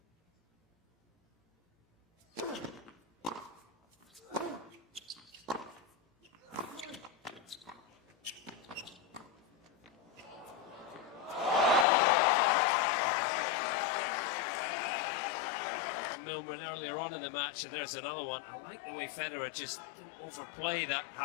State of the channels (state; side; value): drops out; right; at 11.9 s